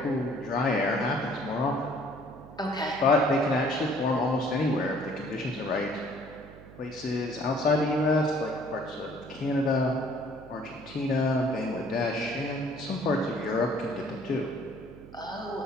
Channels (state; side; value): noise; right; hum, 18 dB below the sound